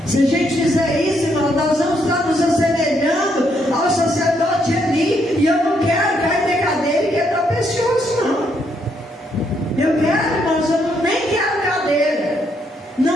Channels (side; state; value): both; normal; correlation 0.74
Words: Se a gente fizer isso, irmão, nós vamos estar nos assemelhando ao sacerdote ali. E eu não quero cair na cadeira e quebrar o pescoço, não. Eu quero, irmãos, eu nem quero cadeira,